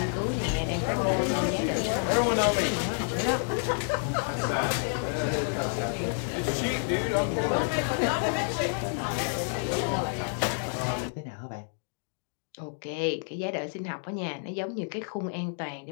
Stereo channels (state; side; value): silent; right; 58 dB below the other